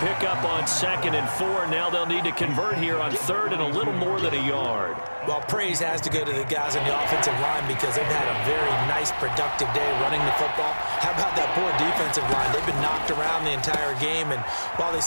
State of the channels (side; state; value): both; inverted; correlation -1.00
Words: pickup on 2nd and 4. Now they'll need to convert here on 3rd and a little more than a yard. Well, praise has to go to the guys on the offensive line because they've had a very nice, productive day running the football. How about that poor defensive line? They've been knocked around the entire game, and while they